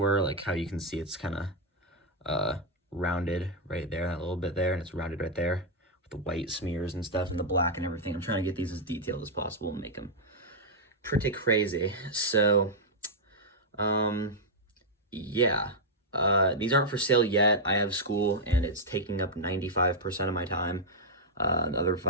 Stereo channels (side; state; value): both; normal; correlation -0.04